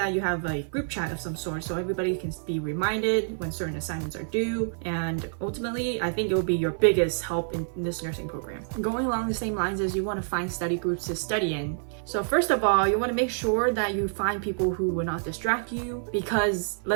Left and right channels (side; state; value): left; silent; 56 dB below the other